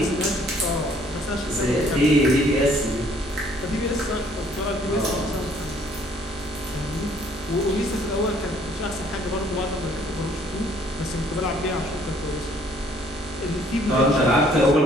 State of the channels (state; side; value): normal; both; correlation 0.61